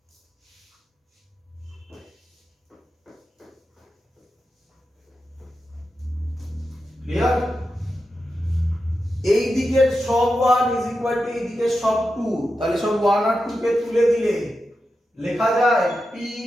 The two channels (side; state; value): both; normal; correlation 0.89